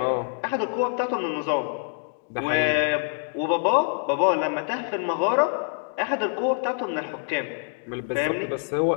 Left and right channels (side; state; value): right; silent; 61 dB below the other